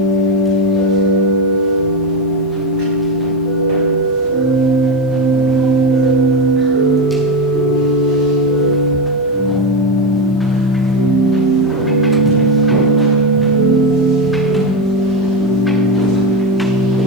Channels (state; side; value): normal; both; correlation 0.13